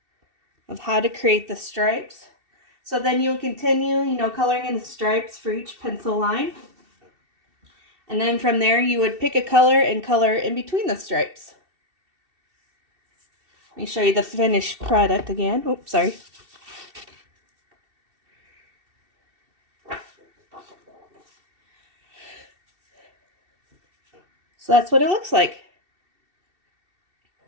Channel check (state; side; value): late; left; 2.7 ms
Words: of how to create the stripes. So then you'll continue, you know, coloring in the stripes for each pencil line. And then from there you would pick a color and color in between the stripes. Let me show you the finished product again. Oops, sorry. So that's what it looks like.